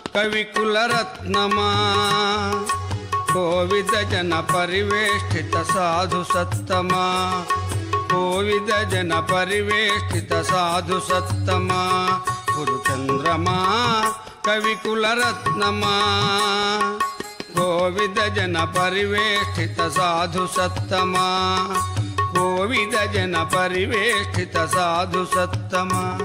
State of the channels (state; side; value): identical; both; correlation 1.00